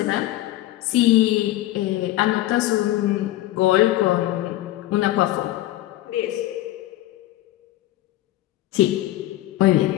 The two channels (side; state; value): right; quieter; 15.5 dB